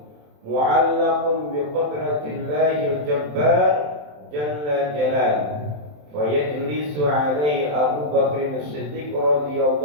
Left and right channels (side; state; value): left; late; 27 ms